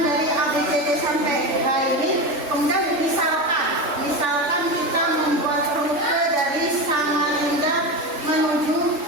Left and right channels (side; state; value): left; late; 3.4 ms